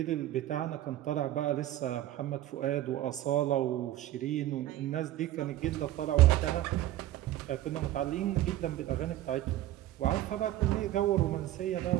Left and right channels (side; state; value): left; quieter; 14.2 dB